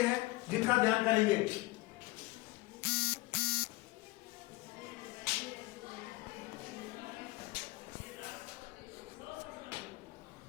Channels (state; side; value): quieter; right; 20.9 dB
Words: हैं, जिनका ध्यान करेंगे।